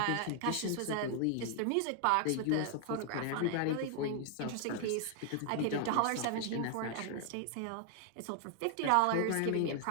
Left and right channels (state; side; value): different; both; correlation 0.00